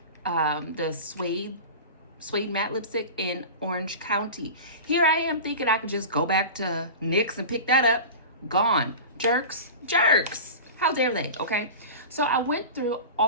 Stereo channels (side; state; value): both; inverted; correlation -0.31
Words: the suede matte lipstick in Orange County. Here I am thinking I could just go back to NYX and pick that up. Gone. Jerks. How dare they, okay? So I went through